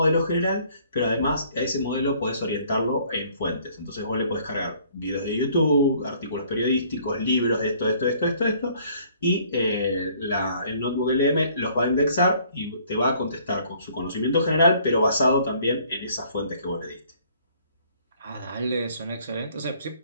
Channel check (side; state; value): both; inverted; correlation -0.60